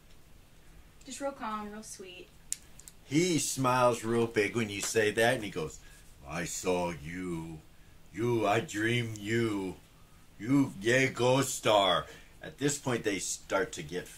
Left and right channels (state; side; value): identical; both; correlation 1.00